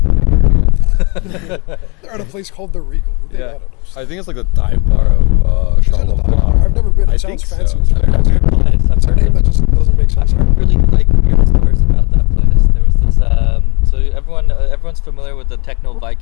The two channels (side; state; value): right; quieter; 30.3 dB